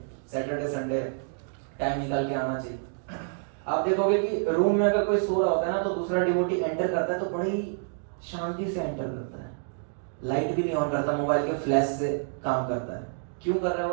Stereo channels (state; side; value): silent; left; digital silence